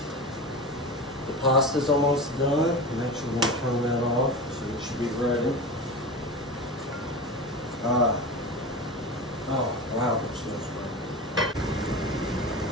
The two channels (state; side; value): normal; both; correlation 0.27